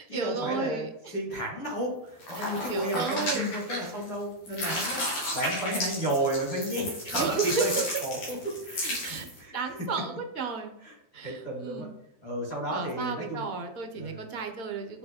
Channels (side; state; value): right; late; 12 ms